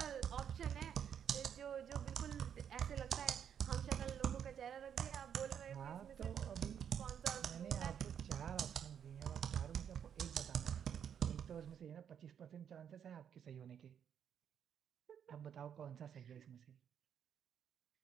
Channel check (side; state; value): left; quieter; 8.5 dB